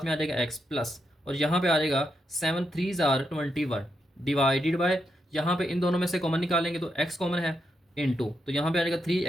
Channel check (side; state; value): both; normal; correlation 0.82